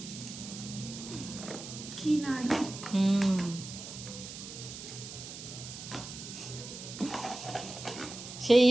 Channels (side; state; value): right; noise; hiss, 11 dB below the sound